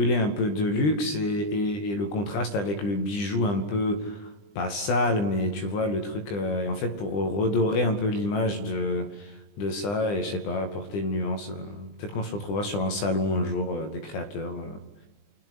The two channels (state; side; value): late; right; 20 ms